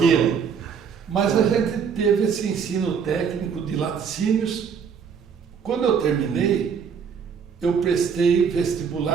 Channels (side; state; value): left; quieter; 6.7 dB